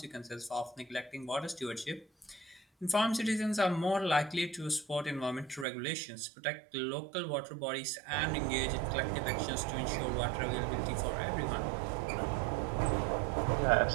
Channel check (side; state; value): left; drops out; at 5.7 s